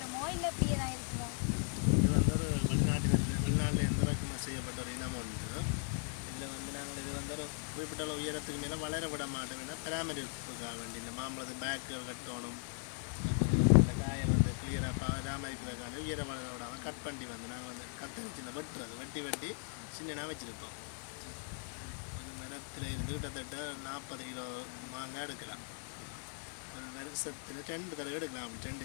குறிப்பிட்ட உயரத்துக்கு மேலே வளர விட மாட்டோம். பராமரிப்புக்காக வேண்டி இந்த மாம்பழத்து பேக்குகள் கட்டணும், இந்த காயல் வந்து கிளியராக பராமரிக்கிறதுக்கான உயர வளர விடாமல் கட் பண்ணி வந்து நாங்கள் வந்து கத்தரிச்சு இந்த வெட்டுறது வெட்டி சின்னனாக வச்சுருப்போம். ஒரு மரத்தில் இருந்து கிட்டத்தட்ட 40 கிலோ மாங்காய் எடுக்கலாம். ஒரு வருஷத்தில் 2 தடவை எடுக்கலாம். அப்படி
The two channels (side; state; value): right; silent; 52 dB below the other